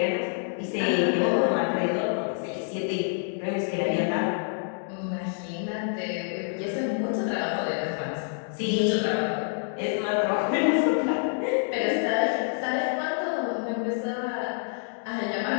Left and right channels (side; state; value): right; silent; 60 dB below the other